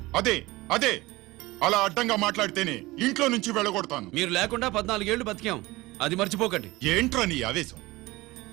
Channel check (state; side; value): quieter; left; 20.3 dB